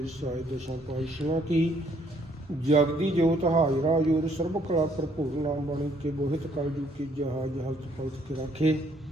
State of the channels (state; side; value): normal; both; correlation 0.66